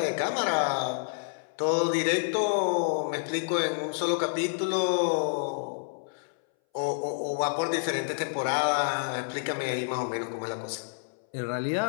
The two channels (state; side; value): silent; right; 59 dB below the other